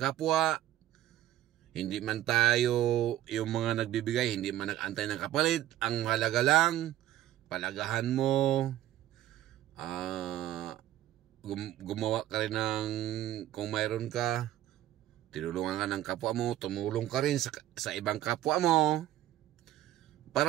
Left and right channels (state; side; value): quieter; left; 13.5 dB